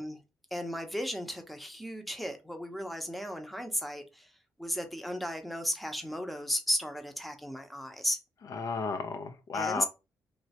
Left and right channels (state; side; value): normal; both; correlation 0.83